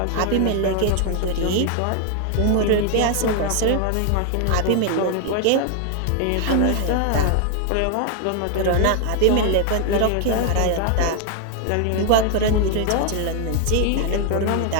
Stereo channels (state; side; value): different; both; correlation 0.00